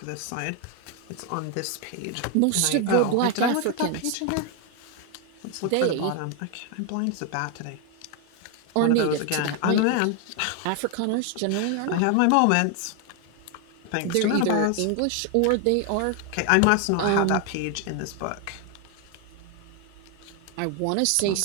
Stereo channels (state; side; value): different; both; correlation 0.01